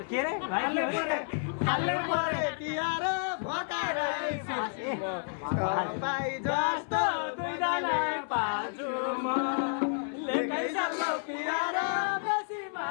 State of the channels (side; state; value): right; silent; 57 dB below the other